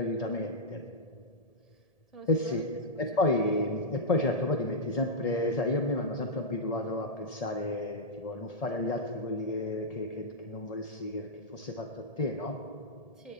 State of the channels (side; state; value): right; late; 1.7 ms